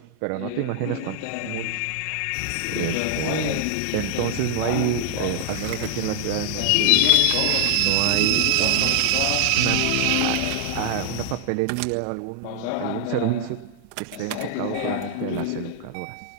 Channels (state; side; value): different; both; correlation 0.00